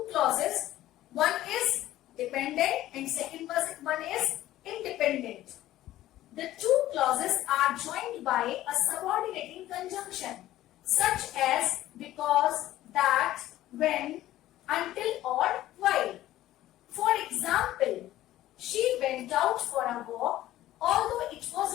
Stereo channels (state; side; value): quieter; right; 14.5 dB